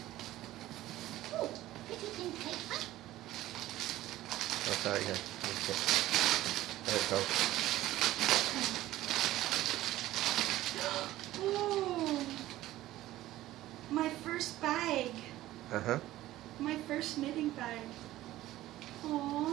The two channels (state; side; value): quieter; left; 15.4 dB